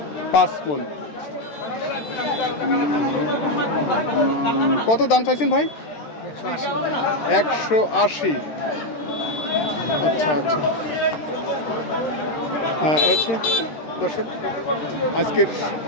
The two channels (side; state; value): right; late; 13 ms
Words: 5 মণ। কত দাম চাইছেন ভাই? 180। আচ্ছা আচ্ছা, আচ্ছা দর্শক, আজকের